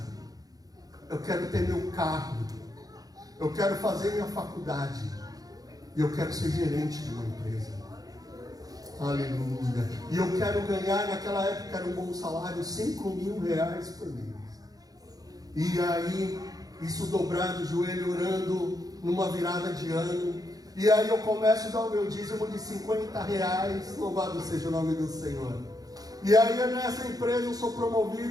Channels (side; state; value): left; late; 0.18 ms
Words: eu quero ter meu carro, eu quero fazer minha faculdade, e eu quero ser gerente de uma empresa. Aleluia. E eu quero ganhar, naquela época era um bom salário, R$5.000 por mês. E aí, isso dobrado o joelho, orando numa virada de ano. E aí eu começo a dar o meu dízimo de R$50. Louvado seja o nome do Senhor. E aí nessa empresa eu sou